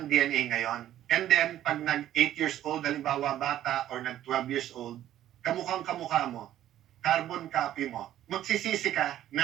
DNA ngayon. And then, pag nag-8 years old, halimbawa bata, or nag-12 years old, kamukhang kamukha mo, carbon copy mo, magsisisi ka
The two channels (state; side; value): quieter; left; 12.4 dB